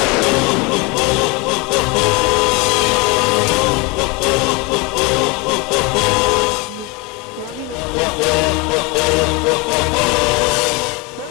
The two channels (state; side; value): quieter; right; 23.6 dB